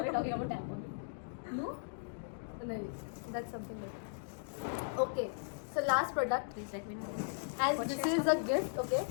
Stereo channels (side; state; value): right; silent; digital silence